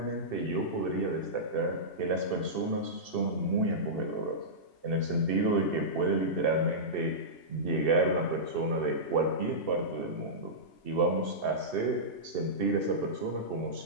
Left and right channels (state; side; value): late; right; 2.7 ms